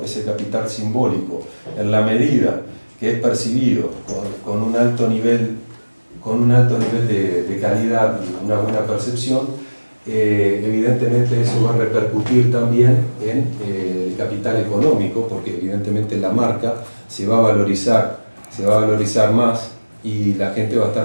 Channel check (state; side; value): inverted; both; correlation -1.00